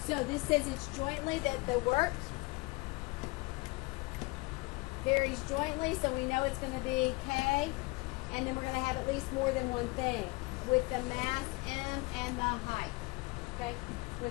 So this says it's jointly that the work varies jointly, so we know it's going to be K, and then we're going to have at least more than one thing with the mass m and the height. Okay,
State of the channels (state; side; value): quieter; right; 24.8 dB